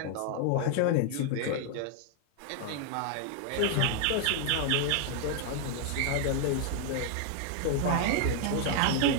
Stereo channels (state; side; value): different; both; correlation 0.00